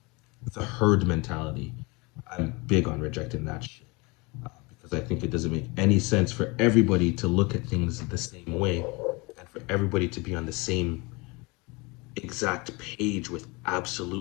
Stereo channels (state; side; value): quieter; right; 26.6 dB